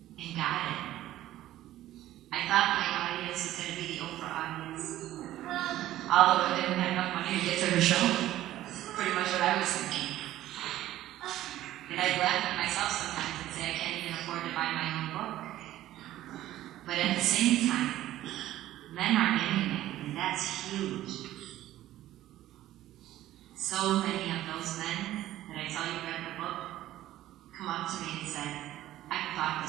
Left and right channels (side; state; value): left; quieter; 14.1 dB